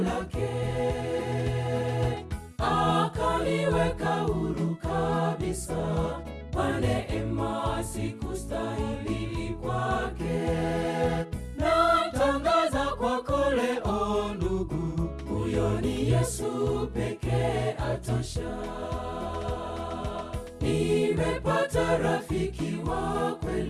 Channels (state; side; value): identical; both; correlation 1.00